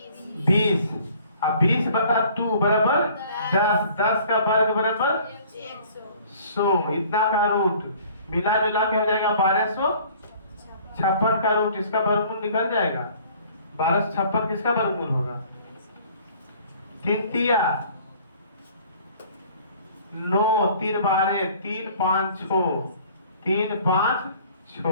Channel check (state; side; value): inverted; both; correlation -0.53